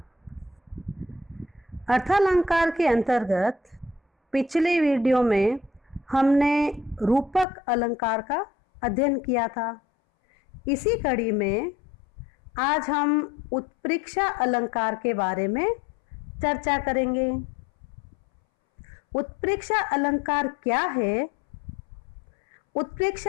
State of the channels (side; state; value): right; drops out; at 7.5 s